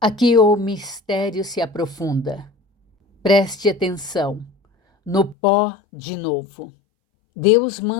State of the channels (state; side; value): drops out; right; at 5.4 s